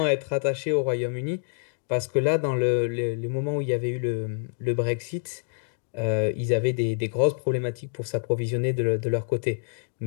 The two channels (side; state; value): right; silent; digital silence